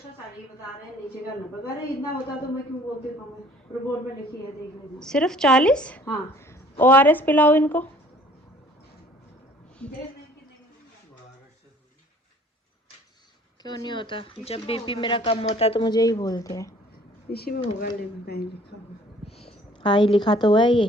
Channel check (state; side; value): normal; both; correlation 0.54